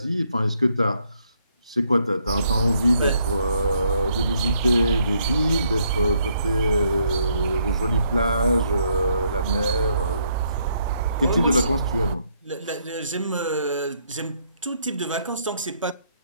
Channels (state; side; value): inverted; both; correlation -0.71